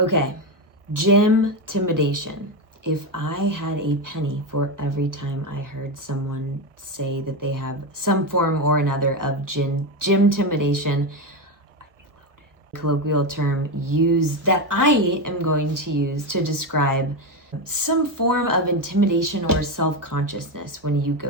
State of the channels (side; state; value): left; late; 1.1 ms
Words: gym-timidation. If I had a penny for every time I heard someone say that they have some form or another of gym-timidation, colloquial term that I am going to use to describe some form of intimidation or self-consciousness when you